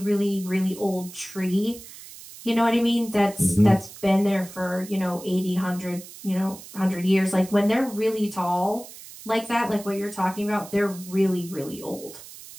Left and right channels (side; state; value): right; noise; hiss, 16 dB below the sound